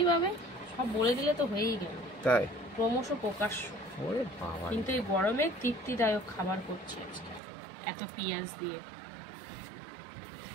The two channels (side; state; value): left; drops out; at 7.4 s